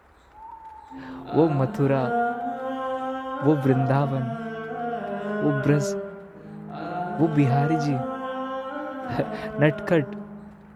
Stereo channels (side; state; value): both; identical; correlation 1.00